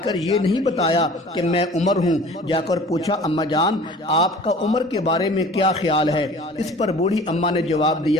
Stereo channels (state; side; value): normal; both; correlation 0.45